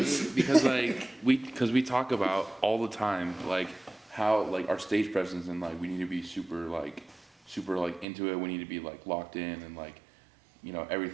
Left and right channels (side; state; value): left; drops out; at 8.1 s